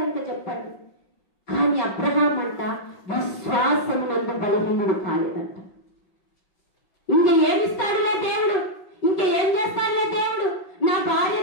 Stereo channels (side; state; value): right; late; 5.3 ms